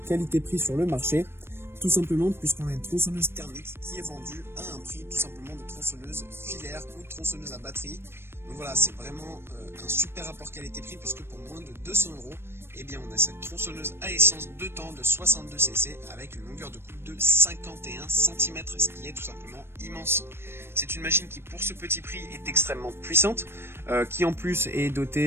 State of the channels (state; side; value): late; left; 0.12 ms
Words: qualité-prix sur le marché. Tout simplement puisqu'on a une tronçonneuse thermique qui est vendue à un prix tout simplement de tronçonneuse filaire ou tronçonneuse à batterie. Donc voilà, c'est vraiment un super rapport qualité-prix puisque pour moins de 200 €, eh bien on a cette tronçonneuse à essence 2 temps de 62 cc avec une longueur de coupe de 51 cm, ce qui est tout simplement immense. C'est une machine qui pour ce petit prix est extrêmement puissante, qui en plus est